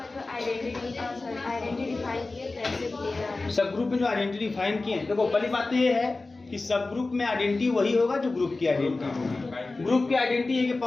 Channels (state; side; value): quieter; right; 3.4 dB